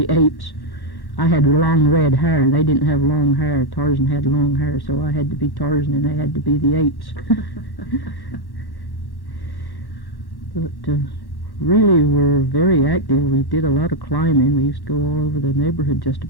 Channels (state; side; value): late; right; 1.1 ms